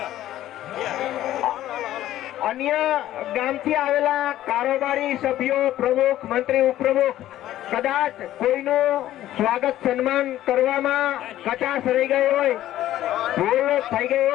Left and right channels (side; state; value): right; quieter; 13.4 dB